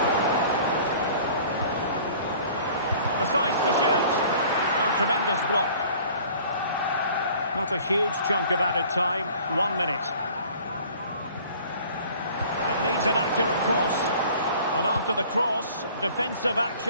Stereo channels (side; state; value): both; inverted; correlation -0.50